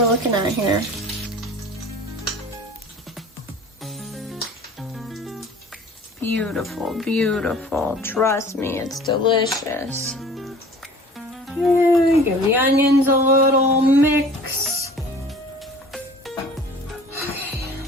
looking at here. Beautiful, beautiful. Trust me, it's delicious. Okay, give the onions a little mix.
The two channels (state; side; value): normal; both; correlation 0.46